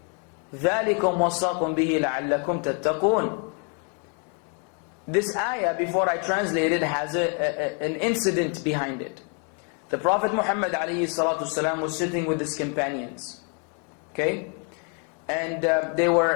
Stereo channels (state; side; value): quieter; right; 39.1 dB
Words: ذَلِكُمْ وَصَّاكُمْ بِهِ لَعَلَّكُمْ تَتَّقُونَ. This ayah, before I translate it, has an incident behind it. The Prophet Muhammad ﷺ was sitting with his companions. Okay? And they